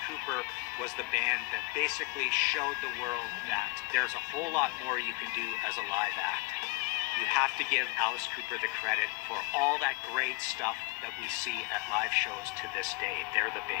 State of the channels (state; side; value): quieter; right; 25.7 dB